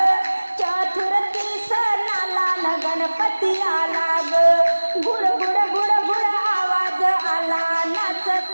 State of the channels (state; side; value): inverted; both; correlation -1.00